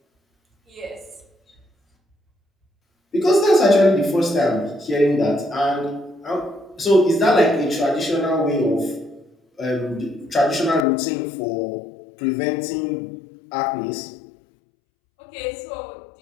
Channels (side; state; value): right; drops out; at 10.9 s